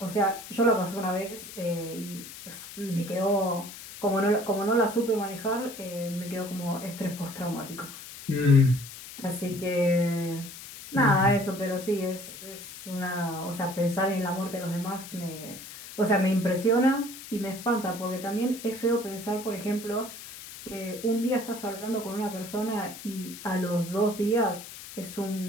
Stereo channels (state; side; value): noise; left; hiss, 13 dB below the sound